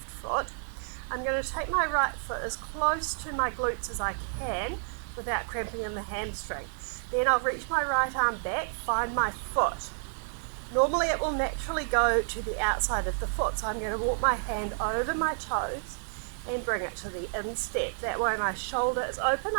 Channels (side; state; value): left; silent; digital silence